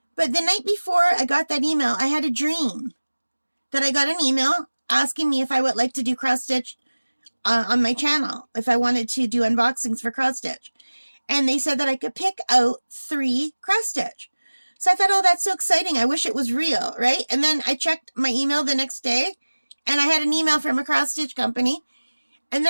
But the night before I got that email, I had a dream that I got an email asking me if I would like to do cross-stitch on my channel. If I wanted to do unboxings for cross-stitch. And they said that I could pick out 3 cross-stitch. So I thought, oh, that's so exciting. I wish it was real, right? And then I checked my email the next day, and I had an email from a cross-stitch company. And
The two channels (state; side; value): inverted; both; correlation -1.00